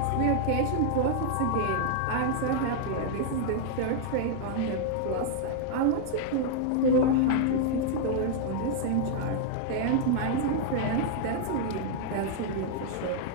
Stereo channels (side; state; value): both; different; correlation -0.01